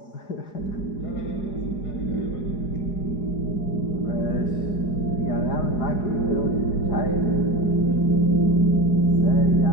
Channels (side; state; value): right; late; 4.8 ms